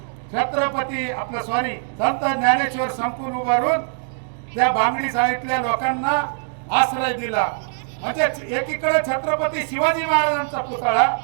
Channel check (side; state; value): left; silent; 64 dB below the other